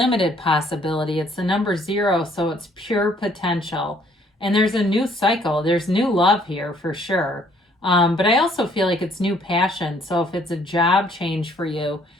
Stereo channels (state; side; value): normal; both; correlation 0.63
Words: possibility. It's the number 0, so it's pure potential. And there's a new cycle. There's new love here for sure. But I also feel like it's new passion. So if it's a job change for you,